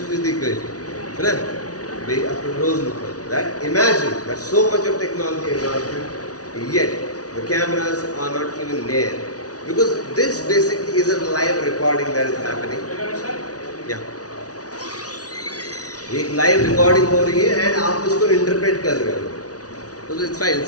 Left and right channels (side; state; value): right; late; 0.68 ms